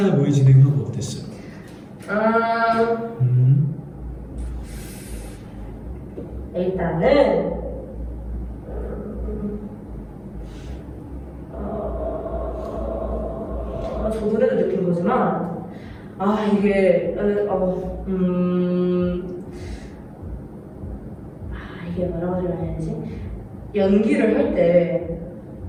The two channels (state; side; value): identical; both; correlation 1.00